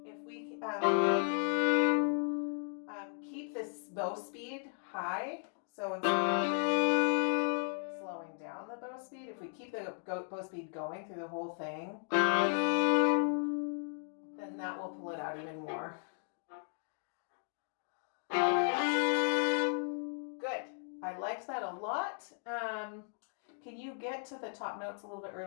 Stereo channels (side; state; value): right; silent; 54 dB below the other